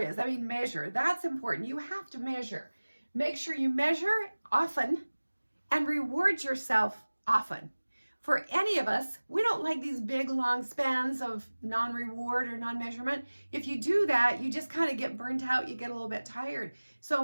I mean, measure. That's important. You have to measure. Make sure you measure often and reward yourself often. For any of us, we don't like these big, long spans of non-reward or non-measurement. If you do that, you just kind of get burnt out. You get a little bit tired.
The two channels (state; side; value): inverted; both; correlation -1.00